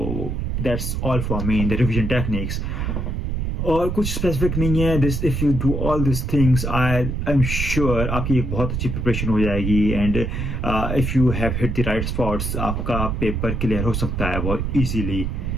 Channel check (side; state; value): right; noise; rumble, 2 dB below the sound